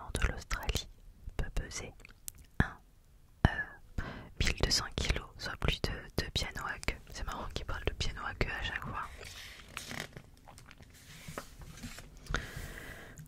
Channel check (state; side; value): identical; both; correlation 1.00